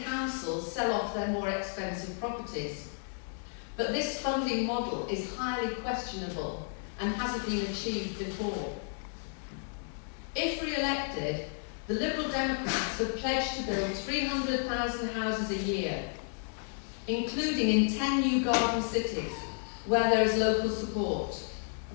councils sell off their more expensive properties. But this funding model is highly questionable and hasn't been achieved before. If re-elected, the Liberal Democrats have pledged to build 300,000 houses a year, including in 10 new garden cities where there is local support.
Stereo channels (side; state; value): right; silent; 56 dB below the other